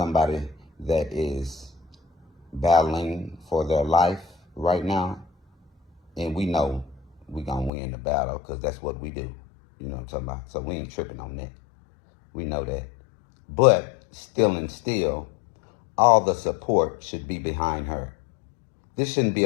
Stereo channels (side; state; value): right; drops out; at 7.7 s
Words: that is battling for their life right now, and we know we're gonna win the battle because that's what we do. You know what I'm talking about? So we ain't tripping on that. We know that. But still, all the support should be behind her. This shouldn't be